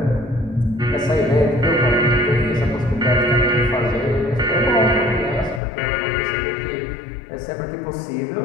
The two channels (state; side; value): drops out; right; at 5.6 s